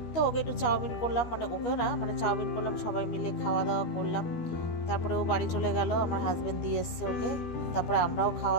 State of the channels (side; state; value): right; late; 13 ms